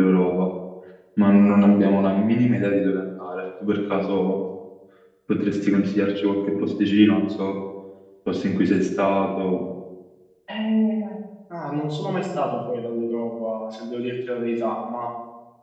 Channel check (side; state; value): both; identical; correlation 1.00